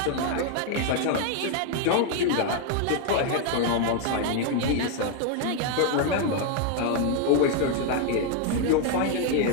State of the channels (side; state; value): both; different; correlation 0.01